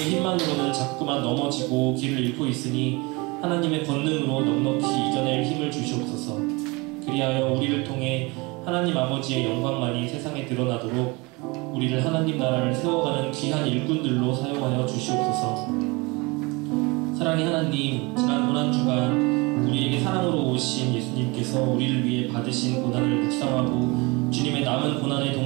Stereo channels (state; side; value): quieter; left; 26.0 dB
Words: 자꾸만 넘어지고 길을 잃고 있으니 하나님의 권능으로 넉넉히 이겨낼 힘을 주시옵소서. 그리하여 우리를 통해 하나님 아버지의 영광만이 세상에 드러나도록 우리를 하나님 나라를 세워가는 귀한 일꾼들로 사용하여 주시옵소서. 사랑의 하나님, 지난 고난 주간 우리에게 사랑으로 오신 예수님께서 우리를 위해 받으신 고난을 묵상하고 주님의 남은 고난에